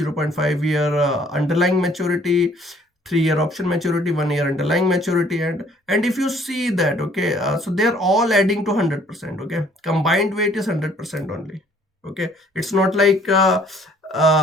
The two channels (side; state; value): both; normal; correlation 0.59